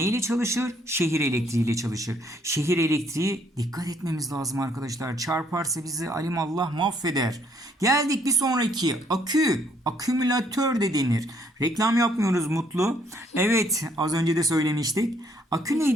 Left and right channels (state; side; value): normal; both; correlation 0.67